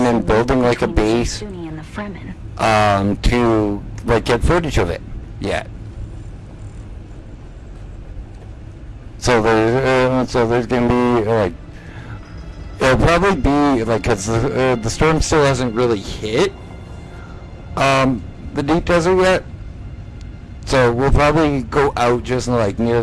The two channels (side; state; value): both; identical; correlation 1.00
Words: and building like a base to like get footage of it yet. So there's gonna be like, it'll probably be like, because the storm still hasn't really hit the deep desert yet. So we'll probably go out just like near